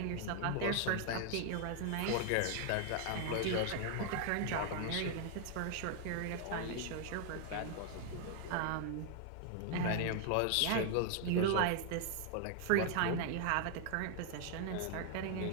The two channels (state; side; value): different; both; correlation 0.00